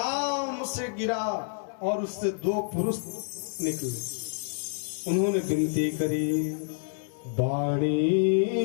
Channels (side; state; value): right; silent; 59 dB below the other